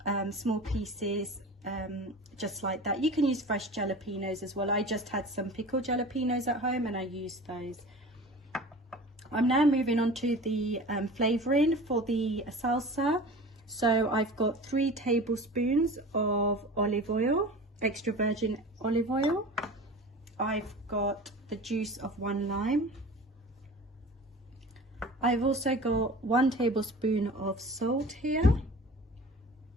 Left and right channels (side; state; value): both; normal; correlation 0.38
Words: small pieces, just like that. You can use fresh jalapeños as well. I just had some pickled jalapeños at home and I used those. I'm now moving on to the flavouring for the salsa. So I've got 3 tablespoons of olive oil, extra virgin olive oil. I've got the juice of 1 lime. I've also got 1 tablespoon of salt here.